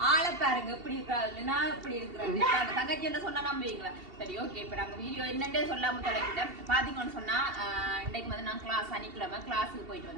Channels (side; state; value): left; late; 2.7 ms